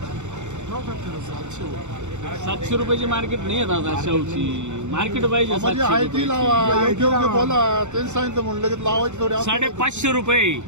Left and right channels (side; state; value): left; late; 0.84 ms